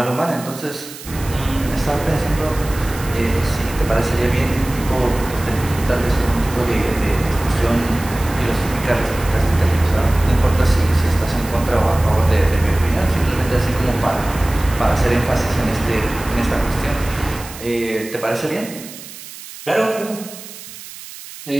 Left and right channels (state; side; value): noise; right; hiss, 15 dB below the sound